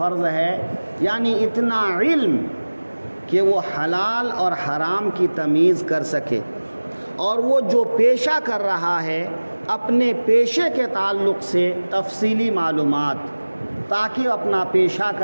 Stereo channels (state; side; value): inverted; both; correlation -1.00